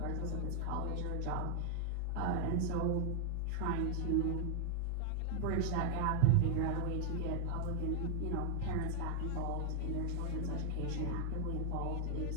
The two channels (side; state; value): both; different; correlation 0.00